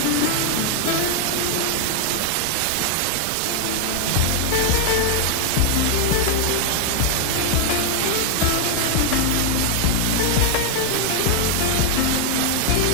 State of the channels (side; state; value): both; different; correlation 0.00